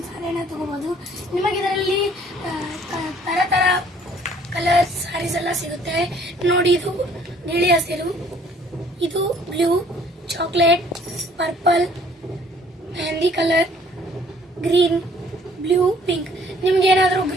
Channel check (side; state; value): both; normal; correlation 0.58